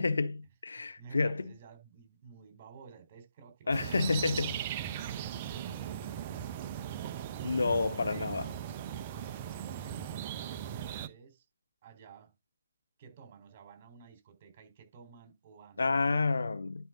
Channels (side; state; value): both; inverted; correlation -0.82